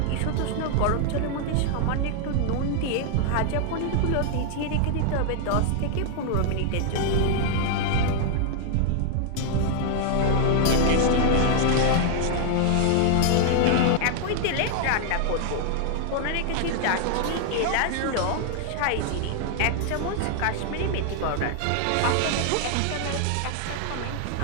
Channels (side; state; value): both; different; correlation 0.00